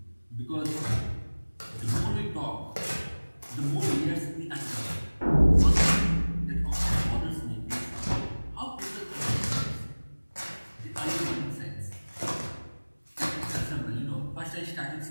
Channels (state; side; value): inverted; both; correlation -1.00